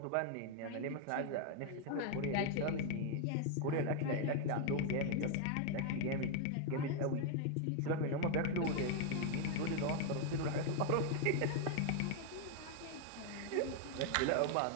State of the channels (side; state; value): both; different; correlation 0.01